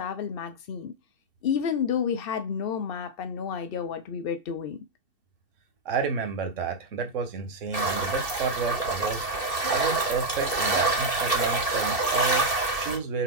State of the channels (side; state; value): right; late; 2.7 ms